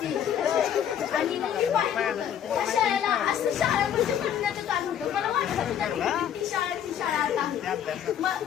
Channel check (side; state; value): right; quieter; 9.5 dB